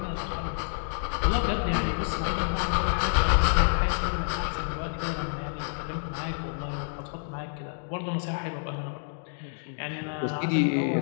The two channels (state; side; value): silent; right; digital silence